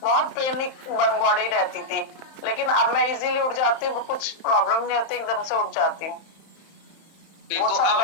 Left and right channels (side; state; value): right; late; 31 ms